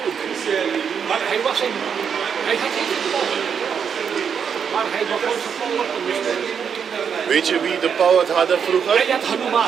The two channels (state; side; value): quieter; left; 7.1 dB